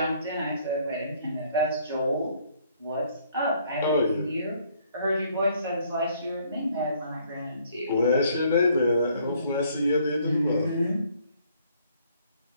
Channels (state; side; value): inverted; both; correlation -0.64